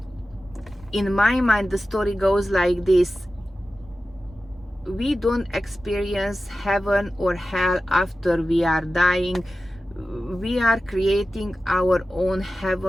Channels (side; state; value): both; normal; correlation 0.94